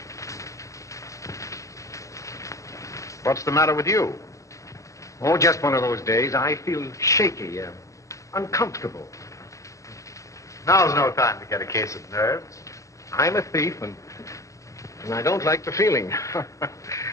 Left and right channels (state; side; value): late; right; 0.15 ms